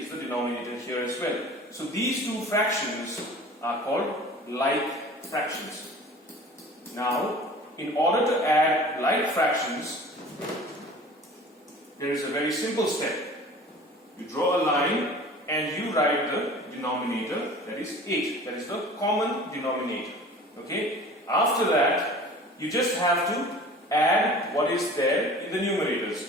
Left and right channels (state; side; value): normal; both; correlation 0.43